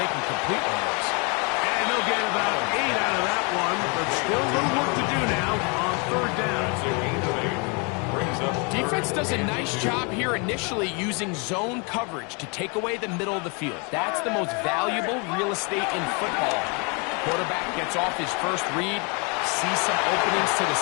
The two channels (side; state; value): right; quieter; 33.0 dB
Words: can complete one of those. And they'll get about 8 out of that one, but still a little work to do now on 3rd down. Defense does a nice job here initially using zone coverage to take away the middle of the field. That's the most valuable real estate in football. Quarterback gets off his first read, sees some openings to the